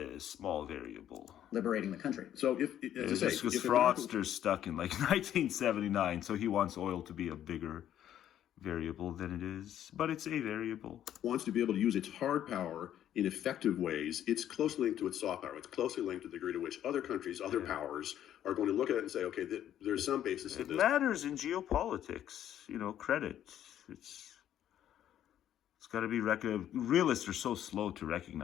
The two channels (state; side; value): quieter; right; 11.0 dB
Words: small variable. Liberating the country. So if as I say, because fraudster's stuck in like 1979, so he wants oil to be a bigger variable than it is, but it's a variable. Wants to be able to use its hard power in effective ways. It's closely linked to its soft power. It's closely linked to the degree to which other countries, other powers are going to look at it and say, okay, there's some basis in this. It matters in geopolitics, credit. It's got to be realists are so slow to